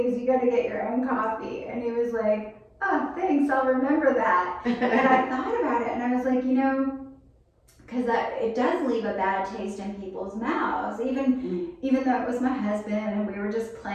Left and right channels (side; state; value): both; identical; correlation 1.00